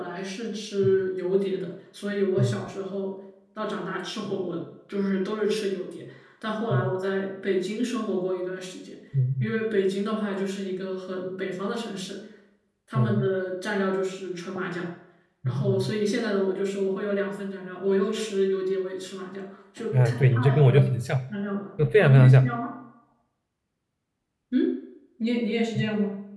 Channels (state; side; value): identical; both; correlation 1.00